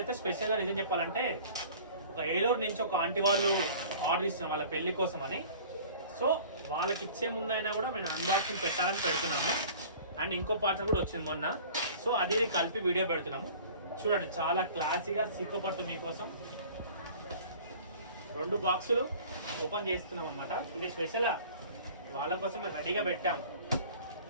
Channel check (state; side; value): inverted; both; correlation -0.45